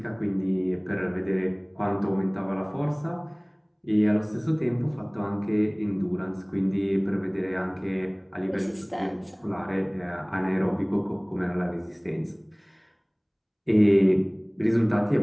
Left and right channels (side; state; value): both; identical; correlation 1.00